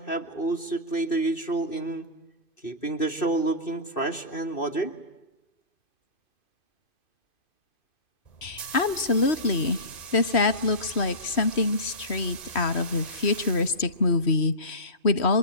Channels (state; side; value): late; right; 3.1 ms